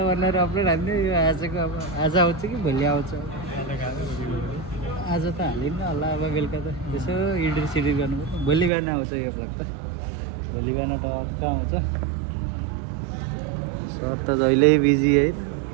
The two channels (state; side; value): drops out; left; at 8.7 s